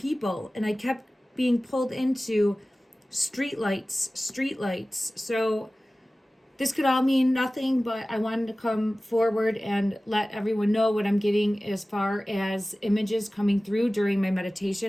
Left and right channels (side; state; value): both; normal; correlation 0.97